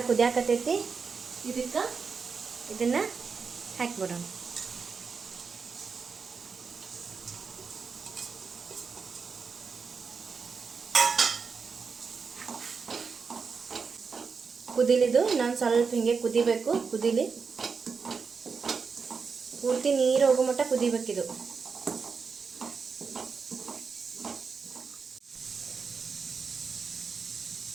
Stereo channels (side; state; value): left; quieter; 5.3 dB